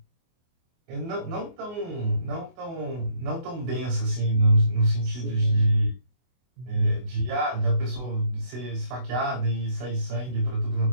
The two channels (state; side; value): late; left; 24 ms